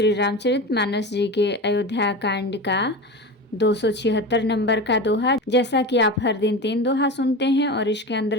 रामचरितमानस जी के अयोध्या कांड का 276 नंबर का दोहा। जैसा कि आप हर दिन 3 दोहा सुनते हैं और इसके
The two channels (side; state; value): both; normal; correlation 0.27